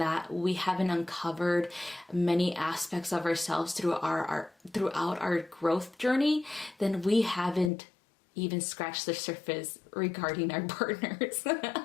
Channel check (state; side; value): drops out; right; at 7.7 s